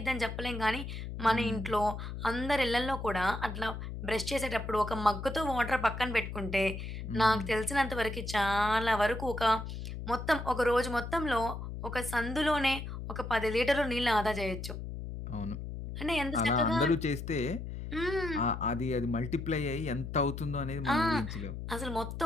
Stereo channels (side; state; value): left; noise; hum, 7 dB below the sound